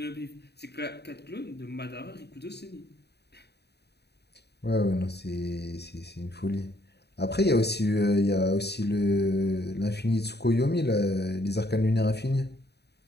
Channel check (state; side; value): late; right; 0.48 ms